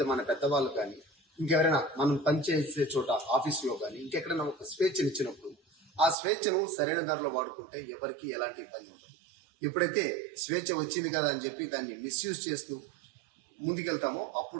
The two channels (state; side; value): drops out; left; at 6.2 s